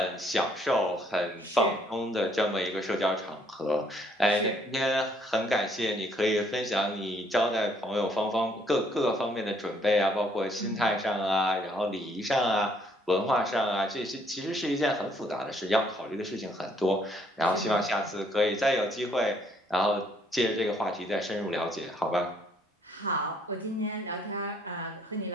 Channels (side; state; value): both; normal; correlation 0.66